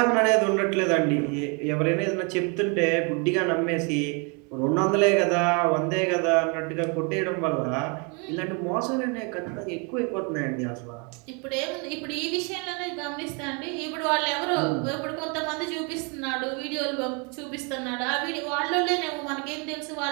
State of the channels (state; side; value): quieter; left; 33.5 dB